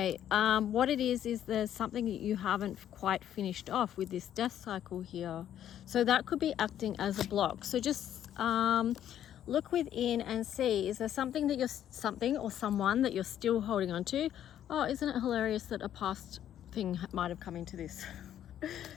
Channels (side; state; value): right; quieter; 10.8 dB